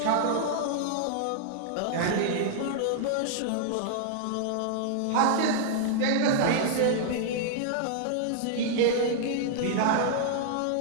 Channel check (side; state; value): both; different; correlation -0.01